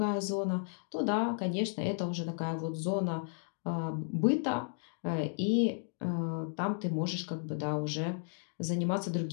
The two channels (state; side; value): silent; right; digital silence